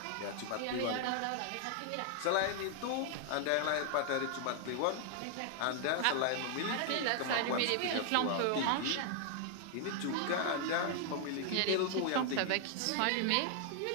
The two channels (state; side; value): different; both; correlation 0.00